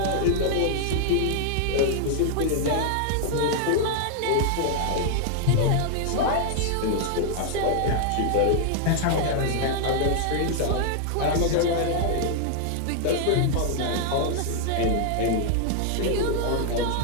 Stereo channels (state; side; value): different; both; correlation 0.00